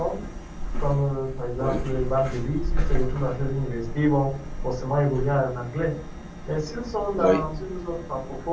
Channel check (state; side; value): identical; both; correlation 1.00